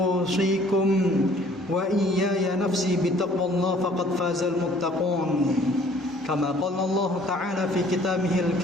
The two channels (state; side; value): normal; both; correlation 0.56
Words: wa iyaya nafsi bitaqwallah faqad fazal muttaqun. Kama qala Allah ta'ala fi kitabihil